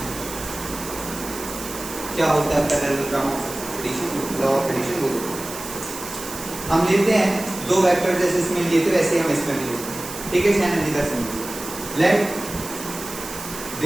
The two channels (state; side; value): noise; right; hiss, 10 dB below the sound